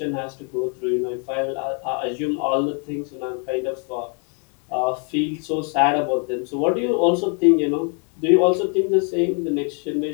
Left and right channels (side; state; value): right; quieter; 39.2 dB